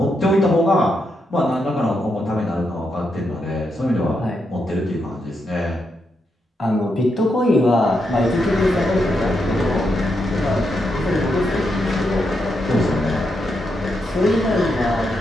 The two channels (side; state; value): both; normal; correlation 0.82